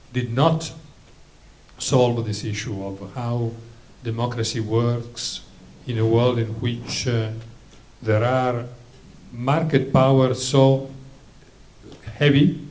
did not solve this issue of how democracy works in a world in which there are market powers so heavy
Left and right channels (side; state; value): both; identical; correlation 1.00